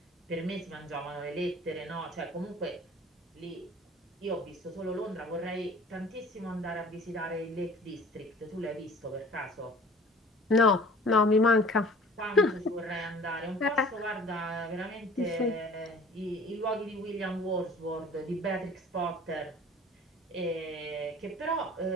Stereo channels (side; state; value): both; normal; correlation 0.48